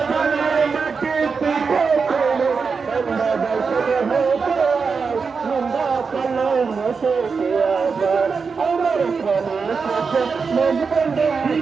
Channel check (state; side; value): quieter; left; 5.2 dB